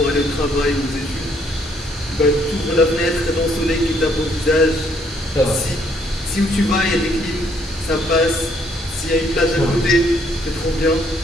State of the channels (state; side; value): normal; both; correlation 0.68